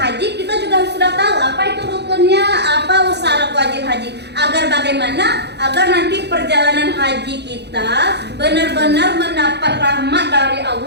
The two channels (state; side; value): late; left; 0.49 ms